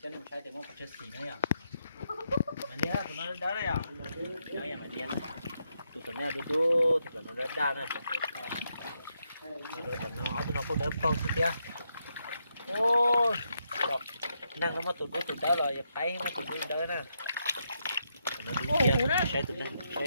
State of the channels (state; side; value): inverted; both; correlation -0.81